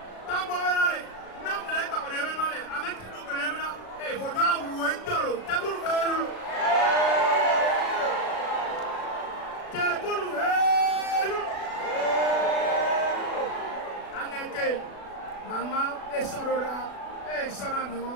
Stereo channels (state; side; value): late; right; 36 ms